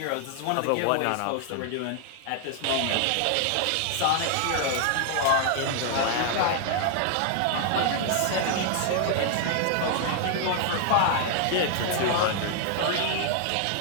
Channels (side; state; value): both; different; correlation 0.00